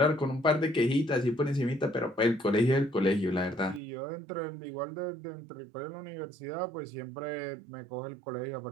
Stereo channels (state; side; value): drops out; left; at 3.8 s